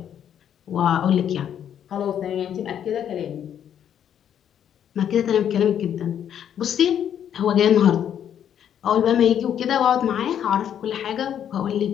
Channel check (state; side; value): quieter; right; 9.5 dB